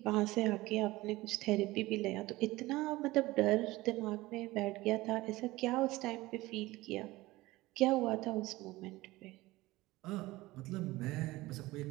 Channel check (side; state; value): left; quieter; 19.2 dB